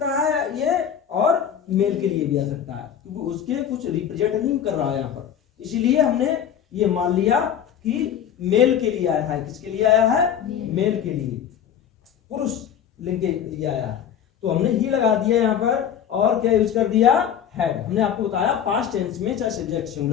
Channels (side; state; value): right; quieter; 8.9 dB